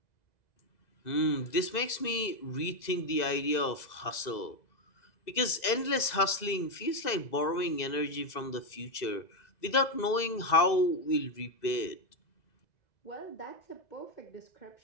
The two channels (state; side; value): late; right; 2.0 ms